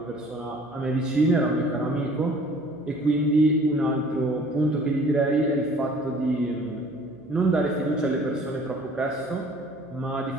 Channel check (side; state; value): right; noise; hum, 25 dB below the sound